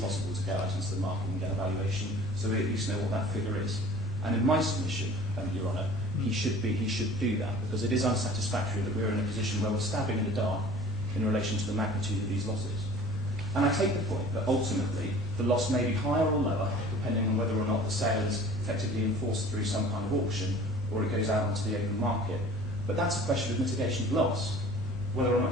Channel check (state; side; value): normal; both; correlation 0.46